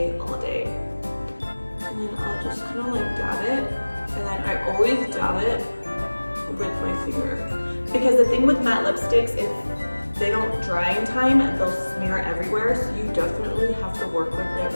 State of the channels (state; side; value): inverted; both; correlation -1.00